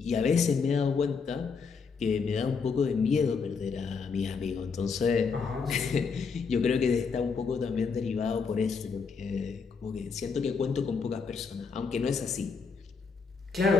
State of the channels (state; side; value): quieter; right; 5.3 dB